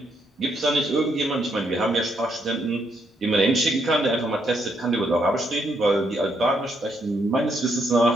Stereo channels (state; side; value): normal; both; correlation 0.75